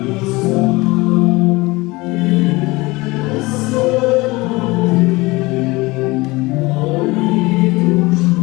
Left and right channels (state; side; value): quieter; right; 22.3 dB